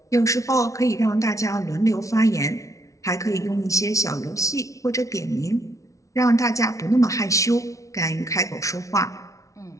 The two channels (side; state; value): right; late; 0.15 ms